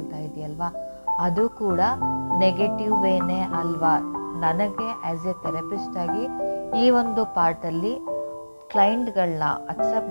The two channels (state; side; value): inverted; both; correlation -1.00